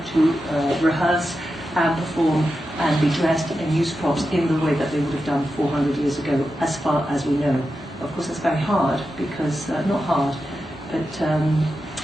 to rehearse and perform and be dressed and use props in the way that they would have done 400 years ago, as far as we know. Of course, that's very hard because, not hard, but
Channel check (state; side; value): normal; both; correlation 0.90